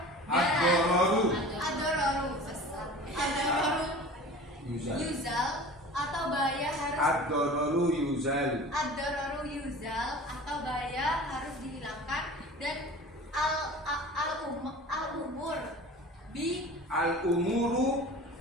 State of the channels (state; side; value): normal; both; correlation 0.39